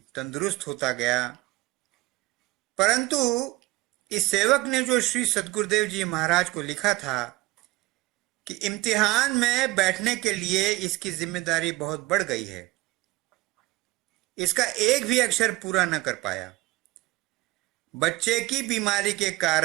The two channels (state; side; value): quieter; left; 20.4 dB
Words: तंदुरुस्त होता गया, परंतु इस सेवक ने जो श्री सद्गुरुदेव जी महाराज को लिखा था कि इम्तिहान में बैठने के लिए इसकी जिम्मेदारी बहुत बढ़ गई है, इसका एक भी अक्षर पूरा न कर पाया। बच्चे की बीमारी के